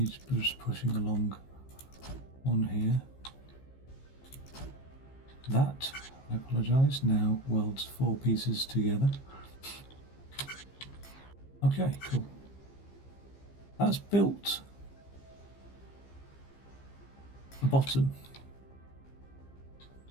just pushing along one here. That, I apologise, now welds 4 pieces together. Okay, cool. That's built a bottom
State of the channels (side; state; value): right; late; 15 ms